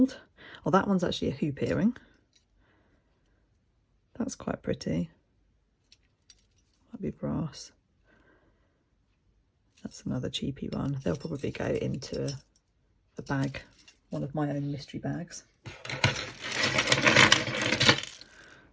Oh, that one's actually a hoop earring. That's quite pretty. Might be brass. That's another cheapy one. They'll probably go into a bag, one of my own mystery bags.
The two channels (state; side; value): identical; both; correlation 1.00